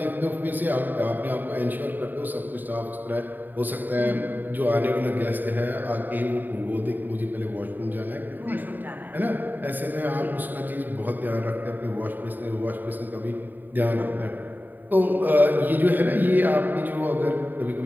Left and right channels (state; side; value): late; left; 0.089 ms